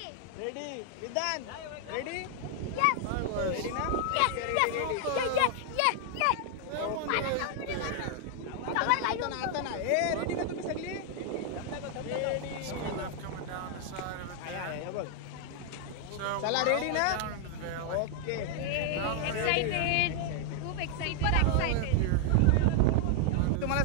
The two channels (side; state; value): both; different; correlation 0.00